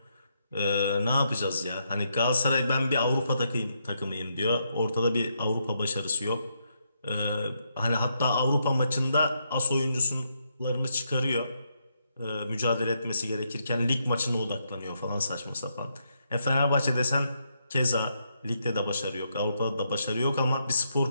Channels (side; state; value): both; inverted; correlation -0.79